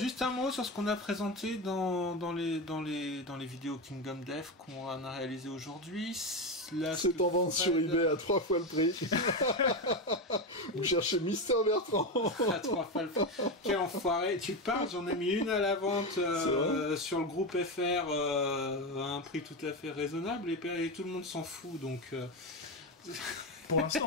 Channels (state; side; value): normal; both; correlation 0.15